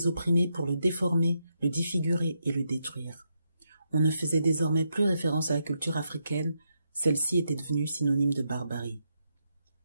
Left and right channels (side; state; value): both; inverted; correlation -0.81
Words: opprimés pour le déformer, le défigurer et le détruire. On ne faisait désormais plus référence à la culture africaine, celle-ci était devenue synonyme de barbarie.